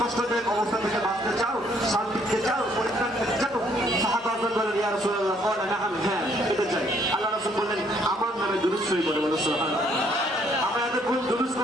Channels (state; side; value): normal; both; correlation 0.66